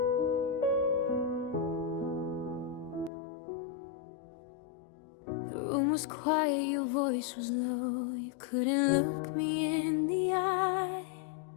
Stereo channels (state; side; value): drops out; right; at 3.1 s